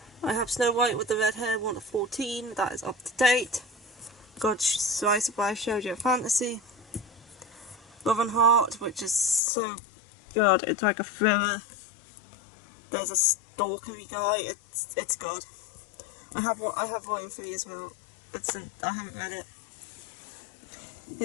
I have Snow White with the Red Hair 1 to 14, that is up to date. Got Slice of Life Shoujo Fantasy. Love and Heart, which is so good. It's like a thriller. There's a stalkery guy. It's good. I have Volume 3 as well. I haven't read it.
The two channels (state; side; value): drops out; right; at 9.4 s